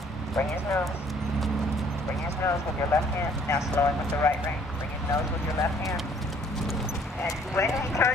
Bring his nose. Bring his nose with your left hand. Now slow him with the right rein. Bring his nose with your left hand. And when he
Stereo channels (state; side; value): normal; both; correlation 0.59